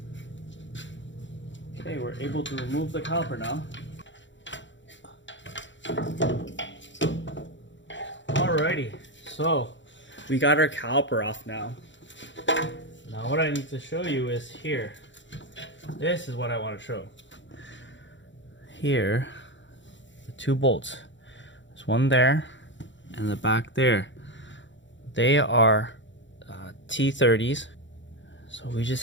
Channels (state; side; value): late; right; 0.54 ms